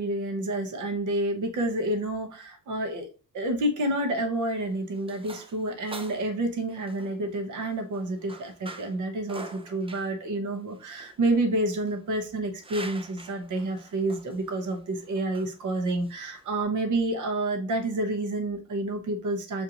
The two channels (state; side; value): normal; both; correlation 0.18